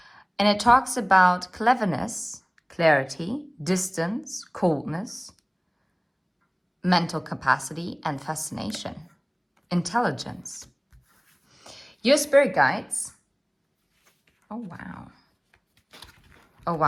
And it talks about cleverness, clarity, distance, coldness, mental capacity, and fascination, intelligence. Your spirit guides. Oh, wow. Oh,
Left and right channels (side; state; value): both; identical; correlation 1.00